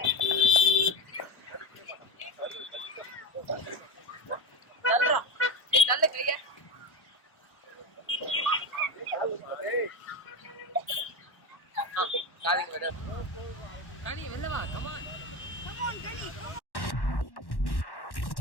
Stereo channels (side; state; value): right; late; 1.1 ms